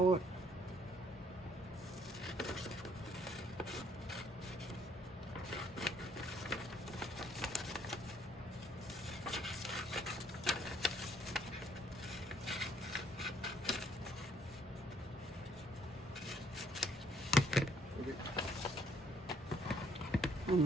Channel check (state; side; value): normal; both; correlation 0.66